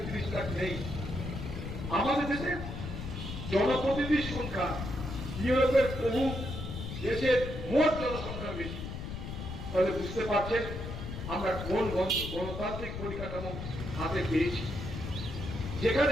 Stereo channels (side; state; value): left; noise; rumble, 7 dB below the sound